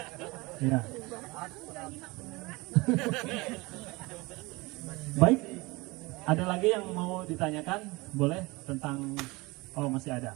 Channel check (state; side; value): quieter; left; 23.5 dB